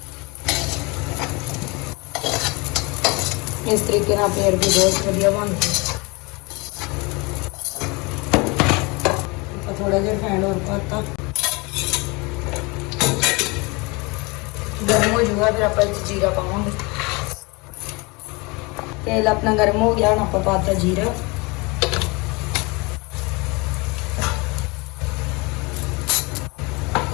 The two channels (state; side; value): quieter; right; 27.0 dB